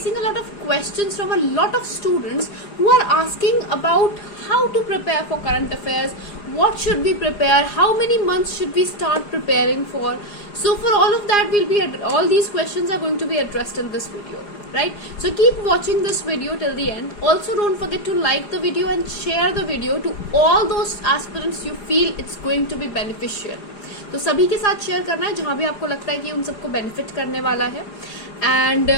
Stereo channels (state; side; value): late; right; 4.9 ms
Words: a lot of questions from a lot of students who are asking about how to prepare for current affairs, what should we prepare, how many months should we start preparing for. So for all of that, all these questions are going to be addressed in this video, right? So keep watching this video till the end. Also don't forget to like the video and share the video to all those aspirants you feel it's going to be beneficial. तो सभी के साथ share करना है जहां भी आपको लगता है कि उन सबको बेनिफिट करने वाला है. And